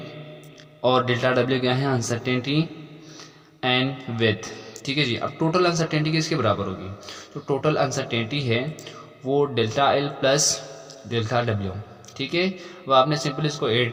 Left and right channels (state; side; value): identical; both; correlation 1.00